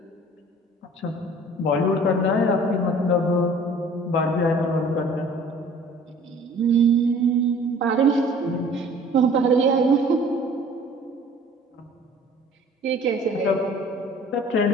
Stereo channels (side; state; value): both; normal; correlation 0.50